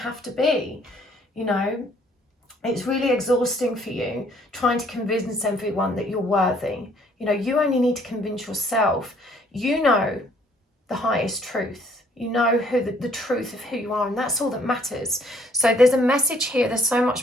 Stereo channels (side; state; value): both; normal; correlation 0.62